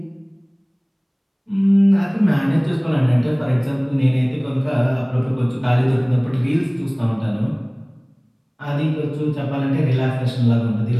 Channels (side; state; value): both; identical; correlation 1.00